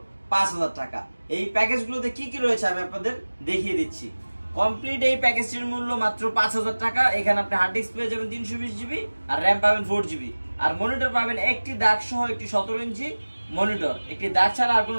5000 টাকা। এই প্যাকেজগুলোতে কি কি রয়েছে আমি আপনাদের দেখিয়ে দিচ্ছি। কমপ্লিট এই প্যাকেজটির মূল্য মাত্র 5000 টাকা। এখানে আপনি হার্ড ডিস্ক পেয়ে যাবেন 320 জিবি আর র্যাম পাবেন 4 জিবি আর মনিটর পাবেন একটি দাগ সহ একটি 17 ইঞ্চি মনিটর। একটি দাগ ছাড়া আর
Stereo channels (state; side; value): inverted; both; correlation -1.00